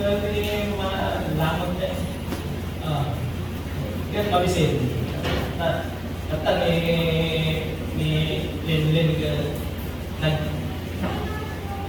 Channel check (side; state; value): right; noise; rumble, 22 dB below the sound